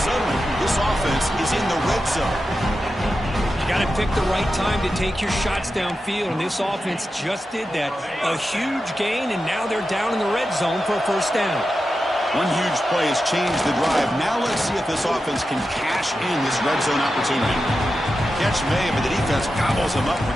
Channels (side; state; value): both; normal; correlation 0.91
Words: this offense is in the red zone. You got to pick the right time to take your shots downfield, and this offense just did that. A huge gain, and now they're down in the red zone for a first down. One huge play has changed the drive. Now let's see if this offense can cash in this red zone opportunity. Catch made, but the defense gobbles him up for